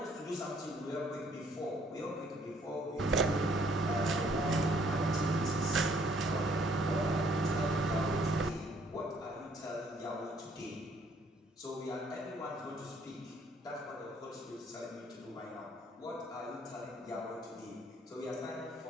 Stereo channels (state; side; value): normal; both; correlation 0.64